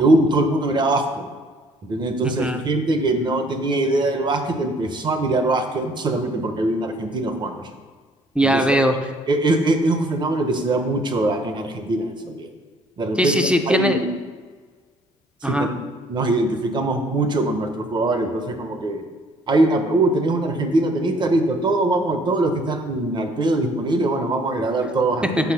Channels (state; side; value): normal; both; correlation 0.60